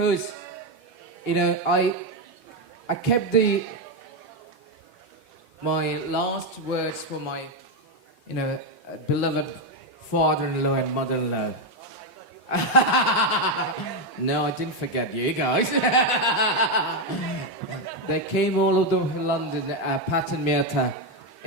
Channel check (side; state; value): both; normal; correlation 0.06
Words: you know, I kept my last words for my, you know, beloved father-in-law and mother-in-law. No, I didn't forget you guys. They came all over London, Pat and Mirta.